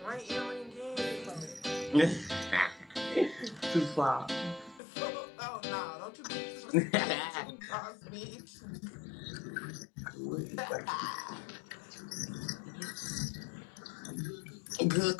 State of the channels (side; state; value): right; drops out; at 4.8 s